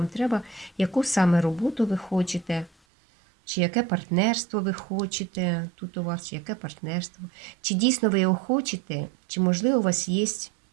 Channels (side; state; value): left; drops out; at 2.7 s